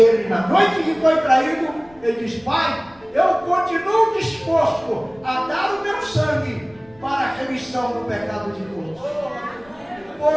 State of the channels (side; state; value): left; noise; rumble, 29 dB below the sound